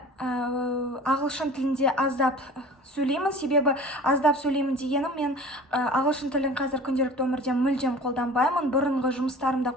ағылшын тілінде аздап сөйлеймін. Себебі аздап сөйлеймін дегенім, мен ағылшын тілін қазір күнделікті өмірде мүлдем қолданбаймын. Бұрынғы жұмыстарымда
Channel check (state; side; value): normal; both; correlation 0.42